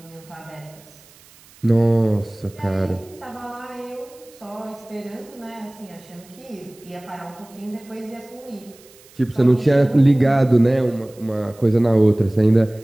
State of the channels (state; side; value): noise; right; hiss, 26 dB below the sound